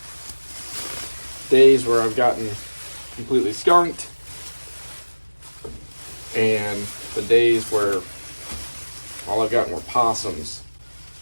days where I've gotten completely skunked and the days where all I've gotten were possums,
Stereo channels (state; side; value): inverted; both; correlation -1.00